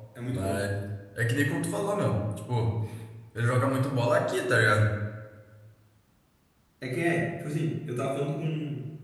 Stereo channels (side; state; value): both; identical; correlation 1.00